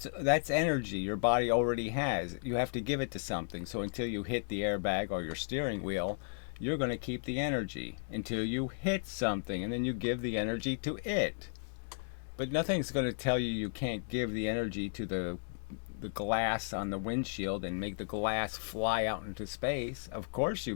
energy your body already has. You have to give it to something. So until you hit the airbag or your steering wheel, you're going to keep the energy until you hit something, and then you give the energy to it. But nothing's going to tell you you can't give the energy to the glass on the windshield and make the glass fly out into space. Of course you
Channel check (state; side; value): silent; right; digital silence